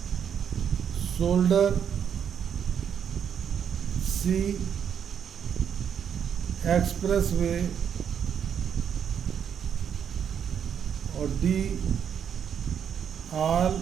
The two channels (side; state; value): left; quieter; 8.2 dB